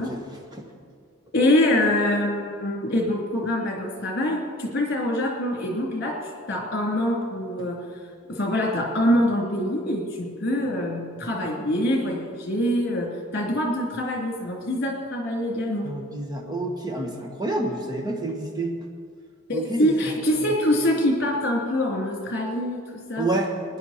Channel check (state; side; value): normal; both; correlation 0.51